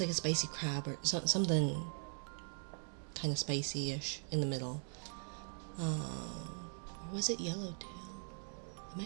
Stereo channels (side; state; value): left; silent; 51 dB below the other